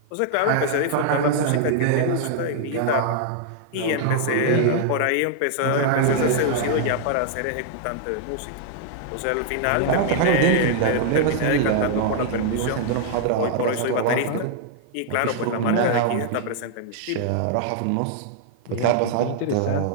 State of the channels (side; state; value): both; different; correlation -0.01